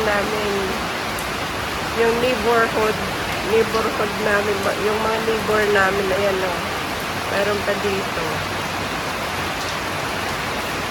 Yung neighborhood namin. Yung mga neighbor namin, ayan, no? Mayroon pa dito.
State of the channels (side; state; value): both; identical; correlation 1.00